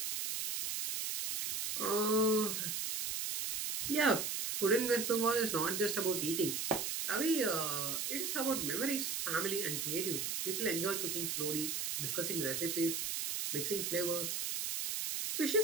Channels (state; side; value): noise; right; hiss, 1 dB below the sound